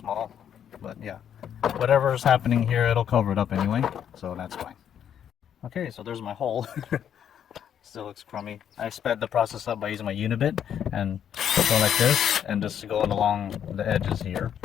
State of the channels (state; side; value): quieter; right; 9.1 dB